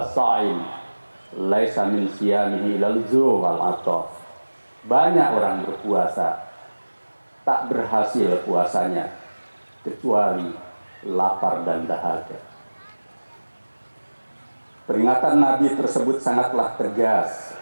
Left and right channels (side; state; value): both; inverted; correlation -1.00